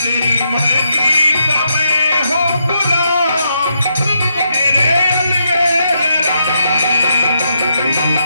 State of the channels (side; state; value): both; inverted; correlation -0.79